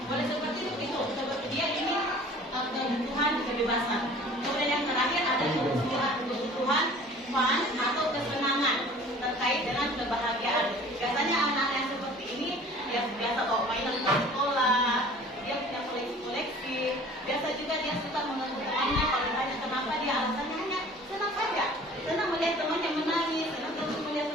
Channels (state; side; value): normal; both; correlation 0.47